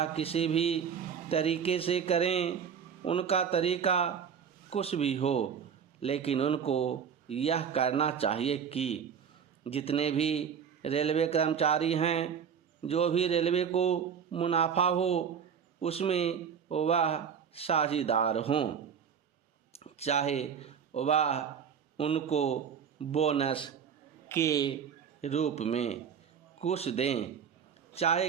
किसी भी तरीके से करें, उनका तरीका कुछ भी हो, लेकिन उनको यह करना चाहिए कि जितने भी रेलवे कर्मचारी हैं, जो भी रेलवे को मुनाफा हो उसमें वह साझेदार हों, चाहे वह उनको बोनस के रूप में कुछ दें, चाहे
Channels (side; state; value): left; quieter; 7.4 dB